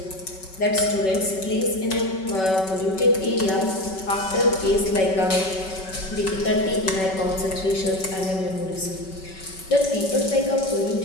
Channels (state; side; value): late; right; 5.3 ms